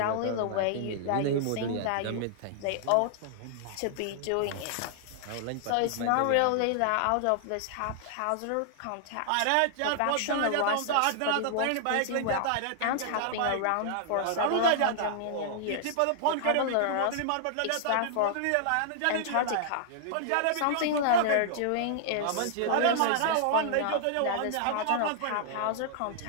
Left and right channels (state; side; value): different; both; correlation -0.01